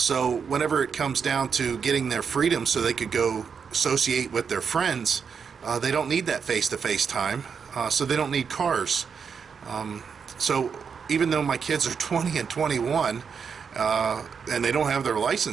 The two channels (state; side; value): quieter; left; 6.3 dB